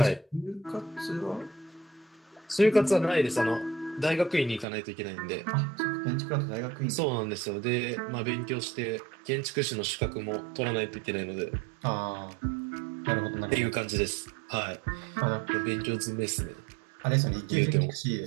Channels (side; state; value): left; drops out; at 4.7 s